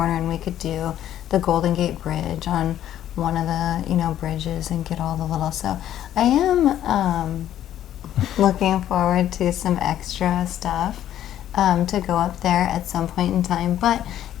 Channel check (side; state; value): right; quieter; 11.6 dB